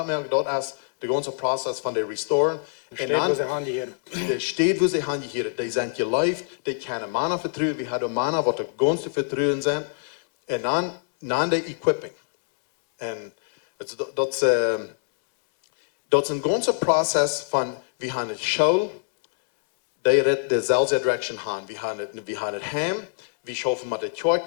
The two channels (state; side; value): silent; right; digital silence